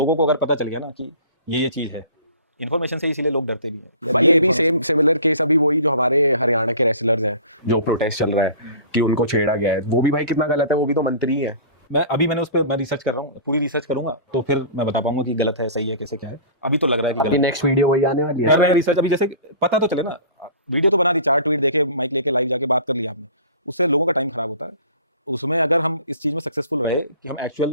को अगर पता चल गया ना कि ये चीज़ है, इन्फॉर्मेशन से इसीलिए लोग डरते भी हैं। भाई ये भी सेम सिमिलर केस अभी वही जो हमारे हरियाणा के रेसलर्स हैं, जो प्रोटेस्ट चल रहा है कि उनको छेड़ा गया है, वो भी भाई कितना गलत है, वो भी तो मंत्री है। मैंने उस पर मैं रिसर्च कर रहा हूँ, पूरी रिसर्च करूंगा तो फिर मैं बता पाऊंगा कि गलत है, सही है, कैसे क्या है। अभी तो लग रहा है कि गलत है। नेक्स्ट वीडियो वही आने वाली है। कर रहे हैं रिसर्च अभी, जैसे पता तो चले ना, वीडियो तो बना दी, 4 ट्वीट देके, माइक लेके लाइव जाके बात कर लिया आपने, उससे लोगों का टाइम खराब होता है। उसमें अगर हम इस चीज में सक्सेसफुल रहे कि हम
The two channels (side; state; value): both; inverted; correlation -0.42